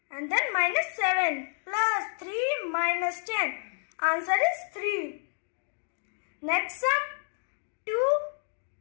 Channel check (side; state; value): right; silent; digital silence